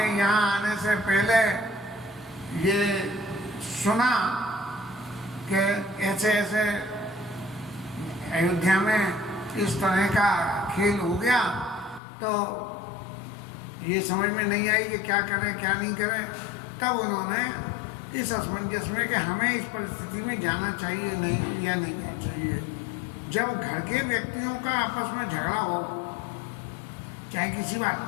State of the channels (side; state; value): right; drops out; at 12.0 s